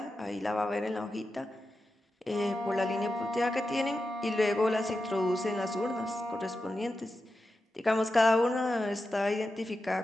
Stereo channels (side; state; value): both; normal; correlation 0.90